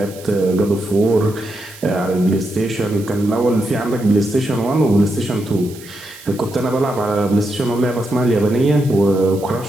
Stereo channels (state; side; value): noise; right; hiss, 19 dB below the sound